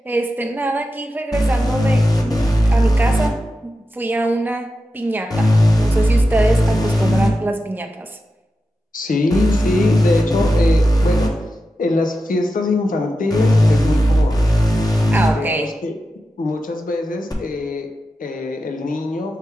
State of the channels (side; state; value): both; normal; correlation 0.91